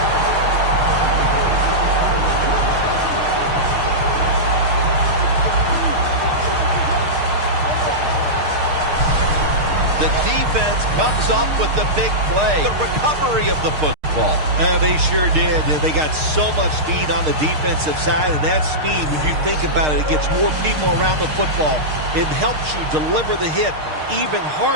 The defense comes up with the big play. The recovery of the football. football. They sure did. They got so much speed on the defensive side, and that speed, when you think about it, it gets more people around the football. It helps you deliver the hit even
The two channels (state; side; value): late; left; 6.5 ms